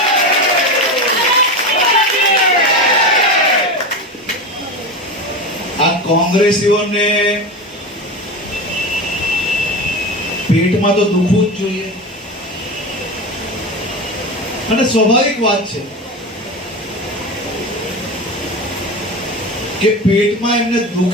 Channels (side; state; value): both; normal; correlation 0.24